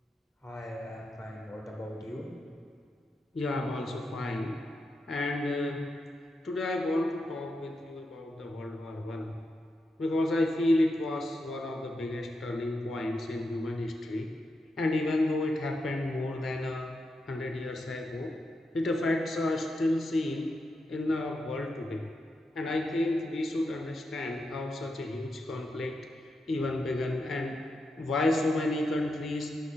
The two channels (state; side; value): normal; both; correlation 0.86